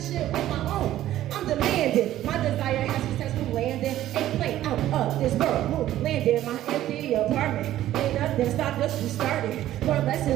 shit on my own. I'm demanding. My desire has successful landing. Ain't playing out Fuck this world, landed my empty apartment. Ain't nothing stopped us, we started. Learn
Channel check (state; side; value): quieter; left; 13.4 dB